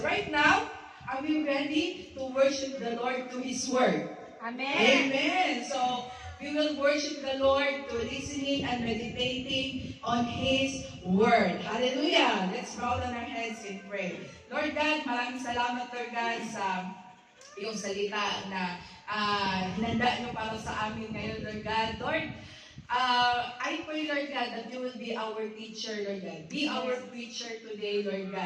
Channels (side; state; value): both; identical; correlation 1.00